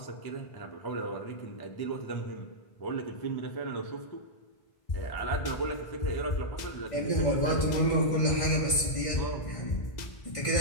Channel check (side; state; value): right; late; 1.5 ms